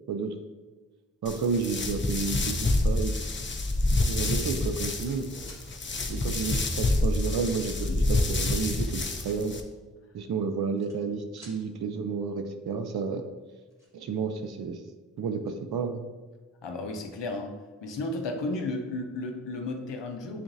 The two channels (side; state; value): both; normal; correlation 0.54